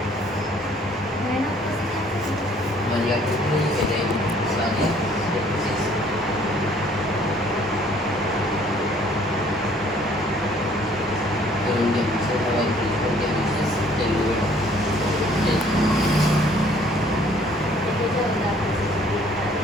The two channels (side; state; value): both; normal; correlation 0.59